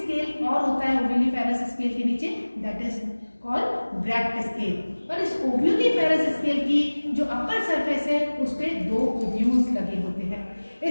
और होता है ओव्यूलिफेरस स्केल के नीचे, that is called bract scale. और इस ओव्यूलिफेरस स्केल की जो अपर सरफेस है उस पे 2 ओव्यूल्स लगे होते हैं।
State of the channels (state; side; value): inverted; both; correlation -1.00